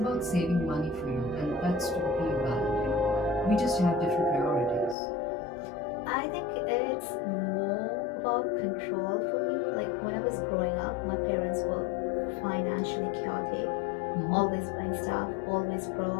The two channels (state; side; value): drops out; right; at 5.0 s